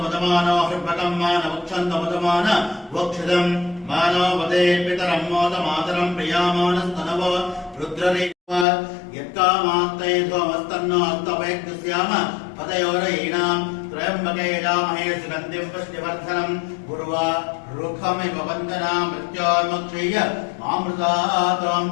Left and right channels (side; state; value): right; drops out; at 8.7 s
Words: मदमानो हृपकं मान वक्षंत मान वक्षिदं मानो वदे पितरं मोद मातरं प्रियामानस्तनव रुद्ररेव यत्कामात्ते ध्वमस्तन्नो अस्तवैक्ष्याम पदयोरयीणां त्रयम्बके यजामहे सुगन्धिं पुष्टिवर्धनं गुरुवा रुखमिव वन्दना मृत्योर्मुक्षीय मामृतात्वम्